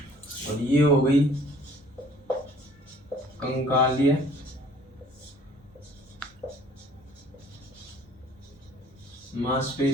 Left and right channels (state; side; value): normal; both; correlation 0.54